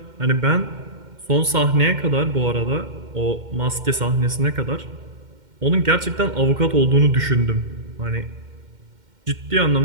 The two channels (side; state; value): left; late; 2.1 ms